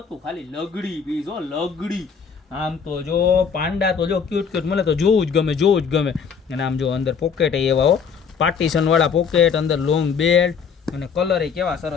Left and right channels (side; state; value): right; quieter; 6.3 dB